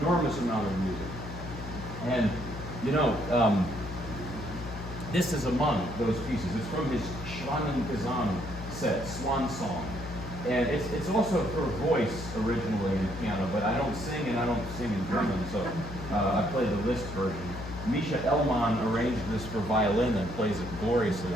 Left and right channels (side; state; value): left; noise; hum, 10 dB below the sound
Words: enormous amount of music. And, you know, this is among those pieces. It's from his Schwanengesang set, Swan Song. And it's also for voice originally in the piano, but I don't sing and I don't sing in German, so I play the Liszt version. Misha Elman arranged this for violin and plays it gloriously